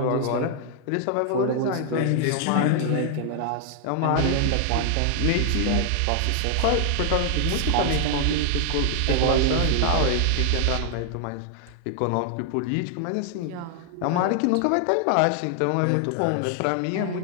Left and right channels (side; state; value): both; different; correlation 0.00